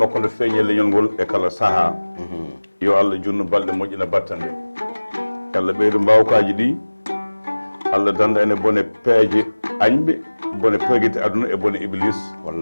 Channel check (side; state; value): both; inverted; correlation -1.00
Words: nde feeñi e leñol ngol e kala saaha yo Allah junnu balɗe moƴƴina battande Allah ɓeydo mbawkaji ɗi Allah danda ene bone peeje añɓe bone peguite aduna e bone iblis